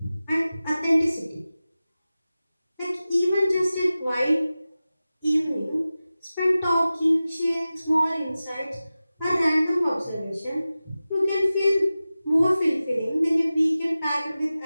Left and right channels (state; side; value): inverted; both; correlation -0.95